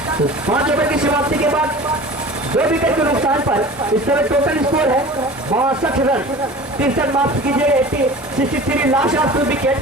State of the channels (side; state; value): both; normal; correlation 0.39